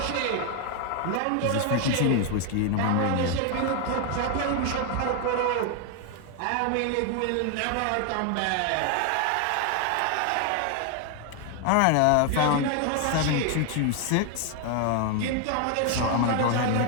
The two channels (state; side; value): different; both; correlation 0.01